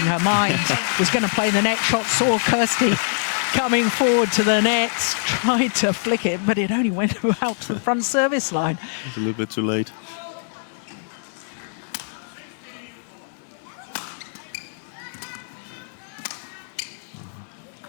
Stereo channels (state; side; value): silent; right; digital silence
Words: her mind, was going to play the net shot, saw Kirsty coming forward to the net, tried to flick it, but it only went out to the front service line. It's a little bit too late.